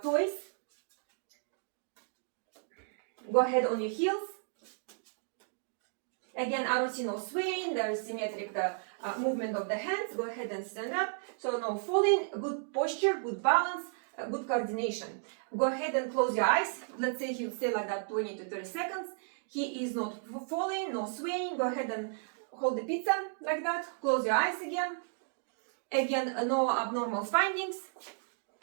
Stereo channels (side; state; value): left; silent; digital silence